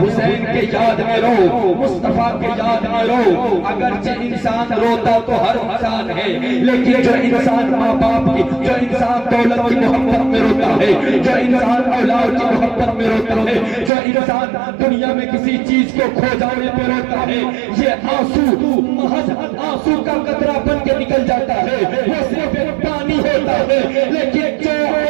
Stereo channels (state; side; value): drops out; left; at 13.9 s